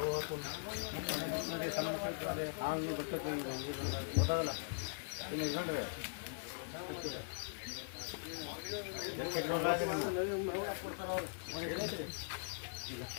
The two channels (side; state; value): right; silent; digital silence